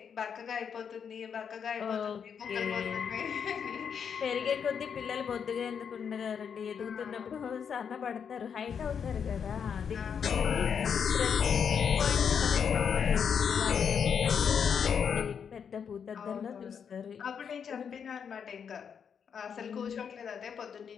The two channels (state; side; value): quieter; right; 7.1 dB